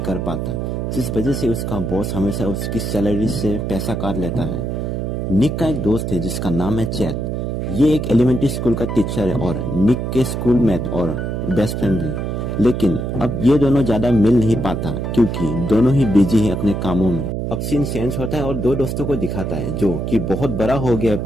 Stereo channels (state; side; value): noise; right; hum, 2 dB below the sound